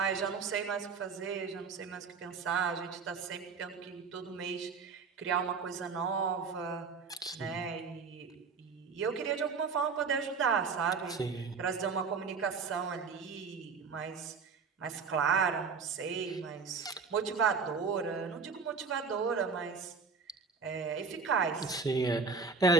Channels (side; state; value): left; quieter; 5.0 dB